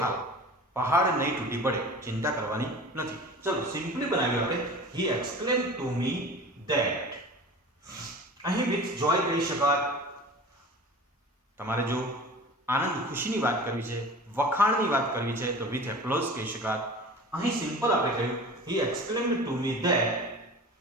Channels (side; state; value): both; normal; correlation 0.38